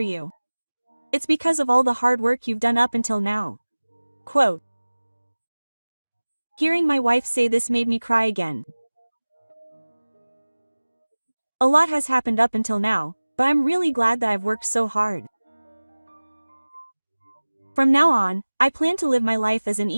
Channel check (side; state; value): both; inverted; correlation -1.00